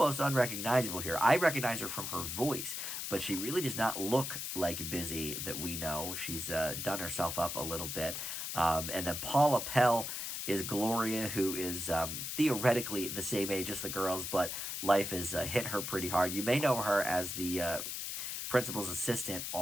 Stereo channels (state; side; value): noise; left; hiss, 4 dB below the sound